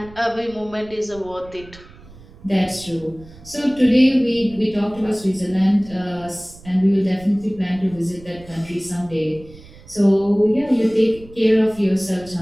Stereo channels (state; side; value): noise; right; rumble, 21 dB below the sound